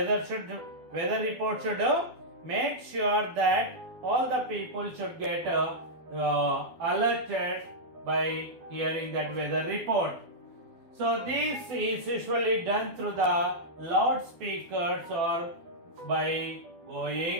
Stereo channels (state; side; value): late; left; 12 ms